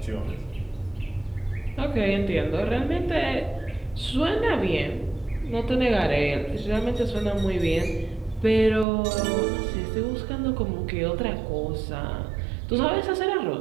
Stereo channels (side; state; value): left; drops out; at 8.8 s